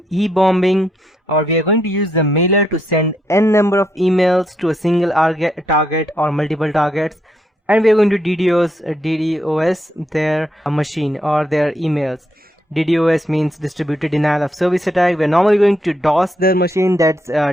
e-bombing, or we are going to use the mailer to send n number of emails to a single target or multiple targets, and we are going to DDoS their machine or their emails. DDoS means distributed denial of service attack. We're normally going to DOS their machine, that's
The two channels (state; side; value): normal; both; correlation 0.77